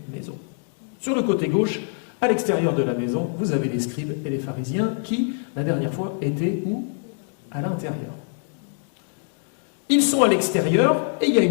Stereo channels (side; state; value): right; silent; 56 dB below the other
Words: maison. Sur le côté gauche, à l'extérieur de la maison, vous avez les scribes et les pharisiens qui, la dernière fois, étaient où? À l'intérieur. Ils sont à l'extérieur et il y a